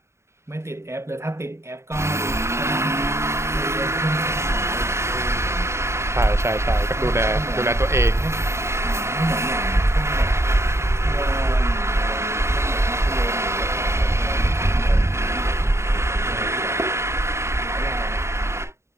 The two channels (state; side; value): late; left; 0.13 ms